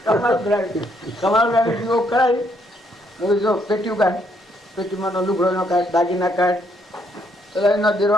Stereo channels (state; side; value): normal; both; correlation 0.72